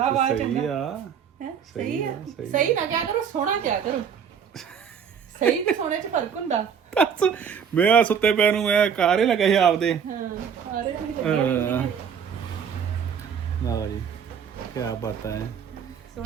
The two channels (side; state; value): left; quieter; 7.4 dB